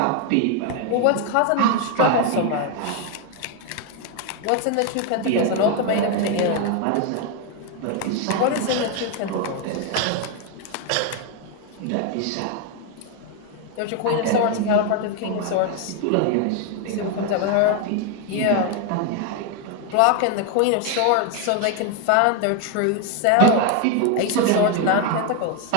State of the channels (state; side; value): different; both; correlation 0.01